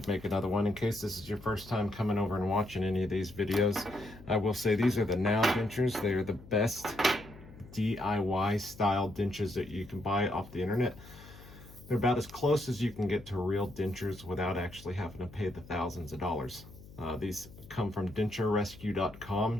make another one in case this is your first time coming over and watching any of these videos. I will say these are the Now Dentures. They are the best DIY style dentures that you can buy off the internet. They're about as close as you can get to real dentures without actually having to pay the thousands of dollars. These come from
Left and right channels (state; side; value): noise; left; hum, 19 dB below the sound